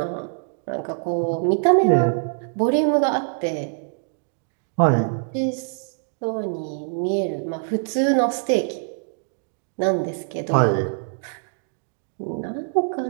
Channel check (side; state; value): left; silent; digital silence